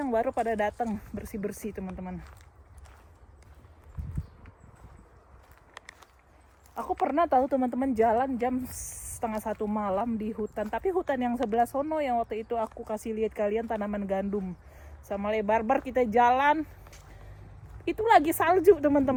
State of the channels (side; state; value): both; identical; correlation 1.00